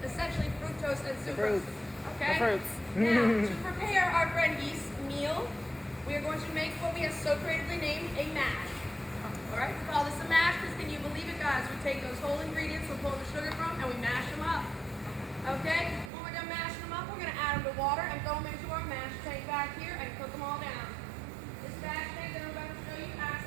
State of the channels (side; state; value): left; drops out; at 16.1 s